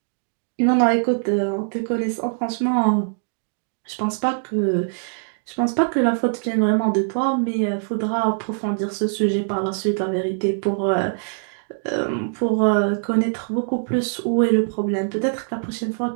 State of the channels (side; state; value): left; silent; digital silence